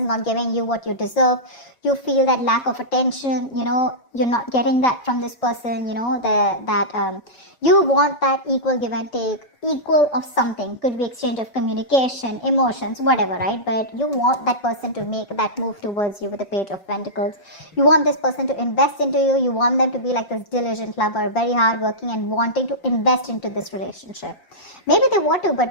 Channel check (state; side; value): late; right; 5.7 ms